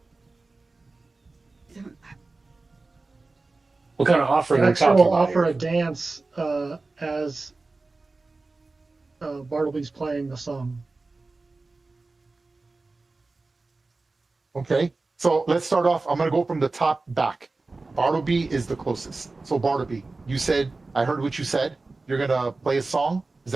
What kind of offering are we Next talking will about offer here? a dance as Bartleby's playing the song. Okay. So let's start off. I'm going to go from the top back. Bartleby is the closest. So Bartleby, you said, I heard what you said. You're going to play a song. Is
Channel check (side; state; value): left; quieter; 3.5 dB